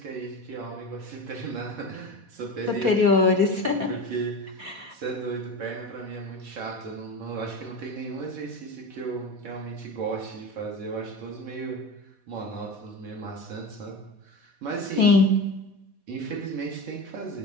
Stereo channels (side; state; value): left; late; 4.1 ms